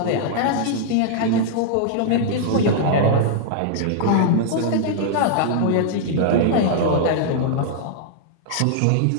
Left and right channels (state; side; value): different; both; correlation -0.01